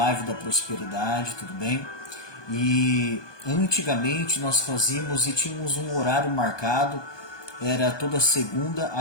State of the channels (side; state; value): right; late; 1.2 ms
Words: da prosperidade, tudo bem? E antigamente nós fazíamos e tínhamos um horário marcado, era toda segunda